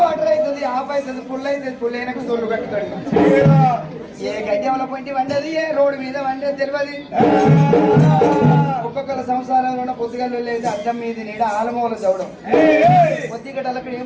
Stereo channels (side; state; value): both; identical; correlation 1.00